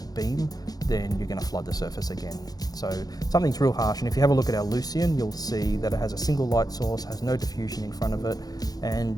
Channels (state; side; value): late; right; 0.19 ms